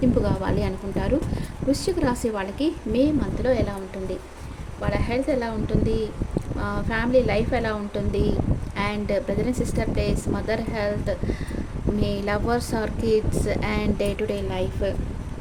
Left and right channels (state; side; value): identical; both; correlation 1.00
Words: కావాలి అనుకుంటారు. వృశ్చిక రాశి వాళ్ళకి మే మంత్లో ఎలా ఉంటుంది, వాళ్ళ హెల్త్ ఎలా ఉంటుంది, ఫ్యామిలీ లైఫ్ ఎలా ఉంటుంది, and brother and sister days, mother health, మీ lovers or kids, and day to day